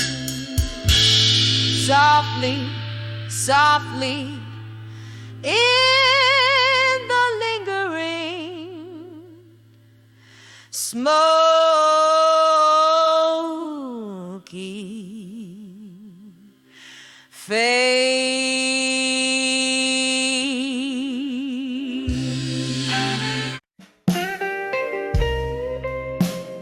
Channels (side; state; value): both; identical; correlation 1.00